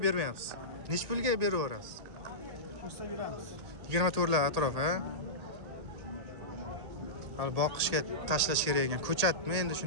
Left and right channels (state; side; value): late; left; 1.8 ms